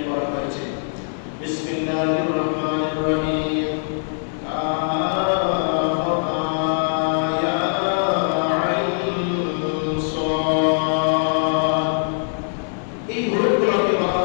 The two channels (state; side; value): silent; right; 64 dB below the other